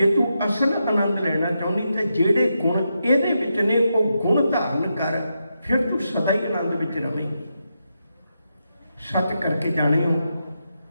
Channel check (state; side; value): inverted; both; correlation -0.85